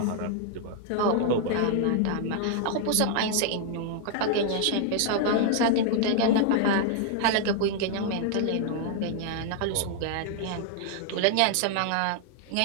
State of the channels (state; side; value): different; both; correlation 0.00